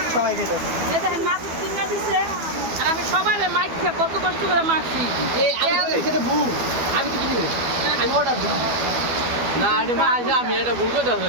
সবাই গেছে এই দেখেন মাছ কিনে দিছে আর আমি সবাই মাইক কত কষ্ট করে মাখছি এই আমি সেটা ভুল আমি তো কিনি আমি অর্ডার দিই না এটা মা আছে আমি এটা ভুল করে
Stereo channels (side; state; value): left; late; 12 ms